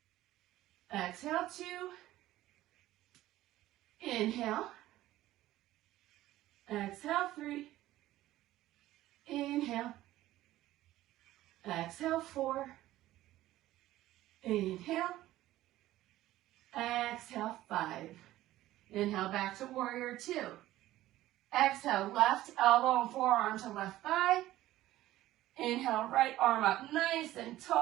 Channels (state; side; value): quieter; left; 15.2 dB